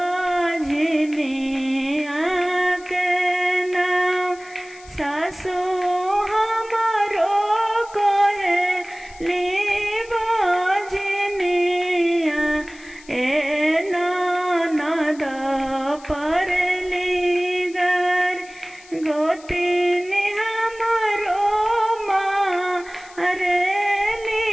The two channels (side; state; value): left; noise; hiss, 23 dB below the sound